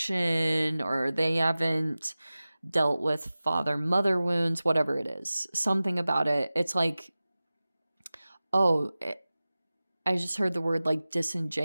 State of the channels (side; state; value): both; inverted; correlation -0.97